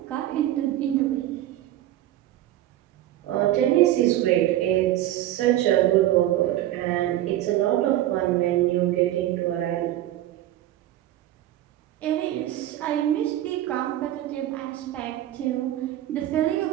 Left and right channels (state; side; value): quieter; left; 13.7 dB